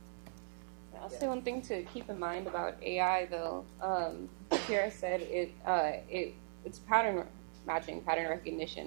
I'll say one thing to keep in mind about AI, though. Kierra said it's pattern matching, pattern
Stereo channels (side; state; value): left; silent; 52 dB below the other